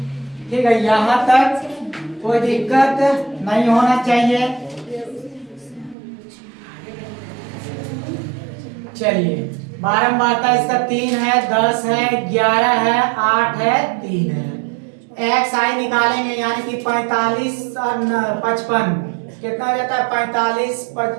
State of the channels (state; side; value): drops out; left; at 6.0 s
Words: ठीक है, यहाँ तक कोई दिक्कत नहीं होना चाहिए। चलिए, बारंबारता इसका 3 है, 10 है, 11 है, 8 है, 3 है। एक्स आई निकालेंगे, यानी कि 45 और 55 कितना हो जाता है, 45